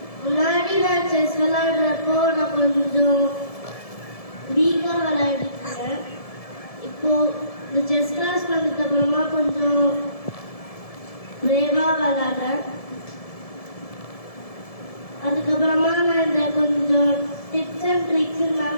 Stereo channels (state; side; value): late; right; 1.7 ms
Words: முன்னாடி நான் செஸ் விளையாடுறப்போ நான் கொஞ்சம் வீக்காக விளையாடிருக்கேன். இப்போ இந்த செஸ் கிளாஸ் வந்ததுக்கு அப்புறமா கொஞ்சம் பிரேவாக விளையாடுறேன். அதுக்கப்புறமா நான் இந்த கொஞ்சம் டிப்ஸ் அண்ட் ட்ரிக்ஸ்